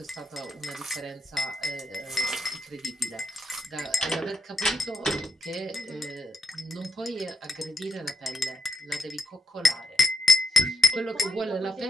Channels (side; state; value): both; normal; correlation 0.84